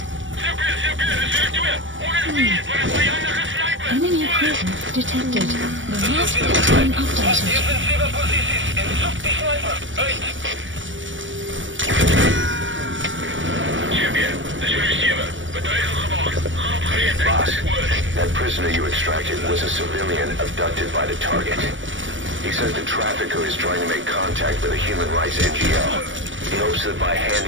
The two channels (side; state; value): left; late; 0.56 ms